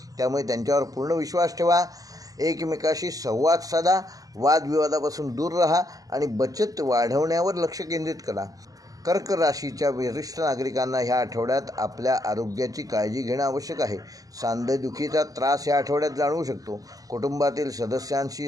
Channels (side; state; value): left; late; 0.17 ms